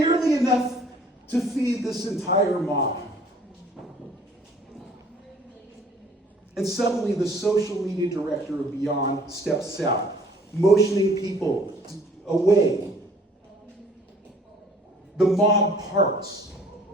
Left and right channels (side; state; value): both; normal; correlation 0.55